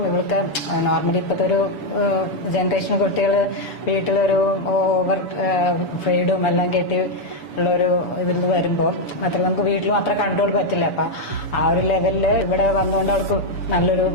ഇവൾക്ക് നോർമലി ഇപ്പോഴത്തെ ഒരു ജനറേഷൻ കുട്ടികൾ വീട്ടിലൊരു ഓവർ ഫ്രീഡും എല്ലാം കെട്ടി ഉള്ളൊരു ഇതിൽ നിന്ന് വരുമ്പോൾ മാത്രമല്ല നമുക്ക് വീട്ടിലും അത്ര കൺട്രോൾ പറ്റില്ല. അപ്പൊ ആ ഒരു ലെവലില് ഇവിടെ വന്നുകൊണ്ട് അവൾക്ക് നല്ലൊരു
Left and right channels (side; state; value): right; late; 7.0 ms